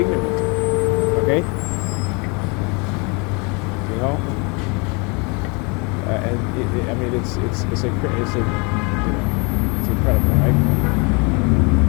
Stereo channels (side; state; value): right; quieter; 30.8 dB